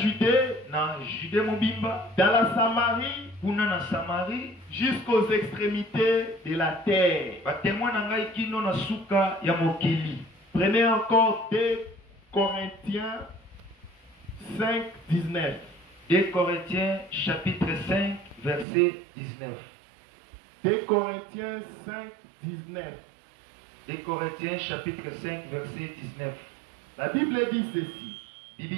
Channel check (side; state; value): left; drops out; at 18.7 s